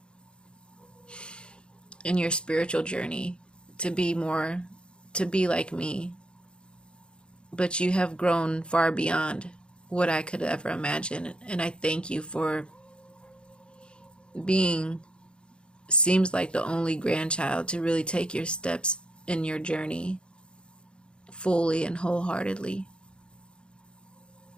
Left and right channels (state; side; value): late; right; 0.054 ms